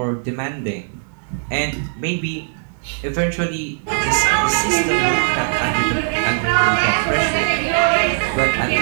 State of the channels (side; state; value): left; silent; digital silence